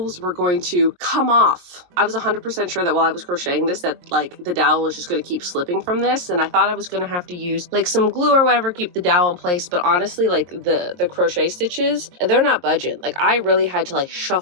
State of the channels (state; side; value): late; left; 23 ms